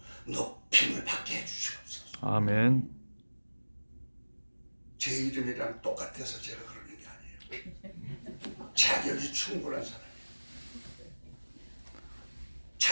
높임을 받게 해주시옵소서. 아멘. 제 이름이랑 똑같아서 제가 그러는 게 아니에요. 자격이 충분한 사람이에요.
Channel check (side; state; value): both; inverted; correlation -1.00